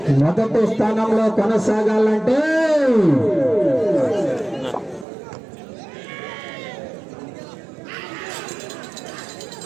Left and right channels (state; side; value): drops out; left; at 5.1 s